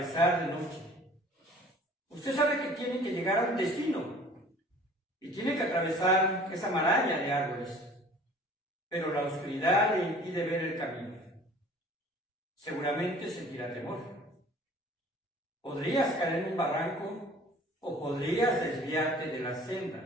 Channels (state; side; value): normal; both; correlation 0.49